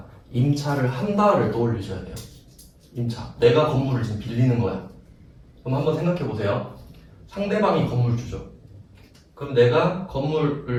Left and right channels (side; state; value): both; identical; correlation 1.00